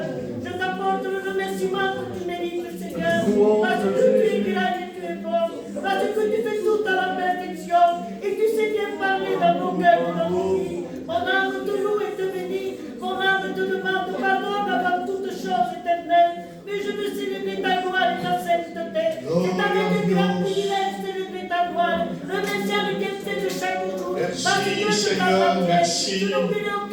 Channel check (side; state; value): both; identical; correlation 1.00